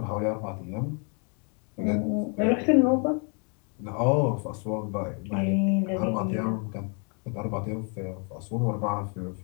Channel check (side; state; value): right; quieter; 38.3 dB